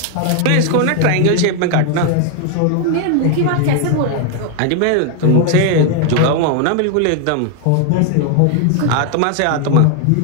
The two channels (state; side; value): different; both; correlation 0.00